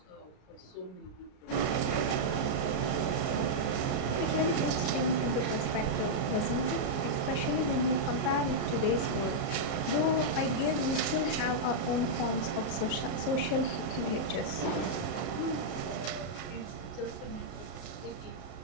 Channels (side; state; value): right; late; 33 ms